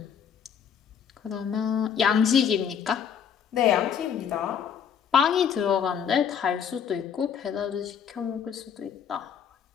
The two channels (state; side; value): quieter; right; 7.8 dB